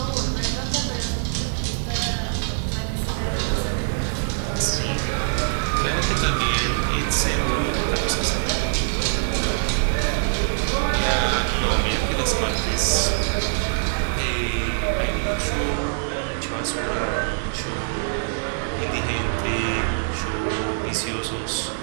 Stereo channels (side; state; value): left; silent; digital silence